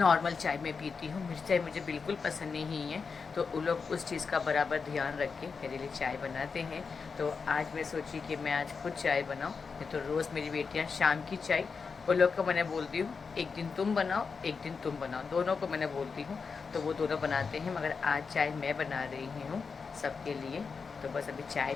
चाय मैं पीती हूँ, मीठी चाय मुझे बिल्कुल पसंद नहीं है। तो उन लोग उस चीज़ का बराबर ध्यान रख के मेरे लिए चाय बनाते हैं। तो आज मैं सोची कि मैं आज खुद चाय बनाऊँ, नहीं तो रोज़ मेरी बेटियाँ शाम की चाय, उन लोग को मैंने बोलती हूँ एक दिन तुम बनाओ एक दिन तुम बनाओ, दोनों को मैंने बोलती हूँ, तो वो दोनों बनाते हैं। मगर आज चाय मैं बना रही हूँ सबके लिए। तो बस अभी चाय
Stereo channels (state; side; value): quieter; right; 5.2 dB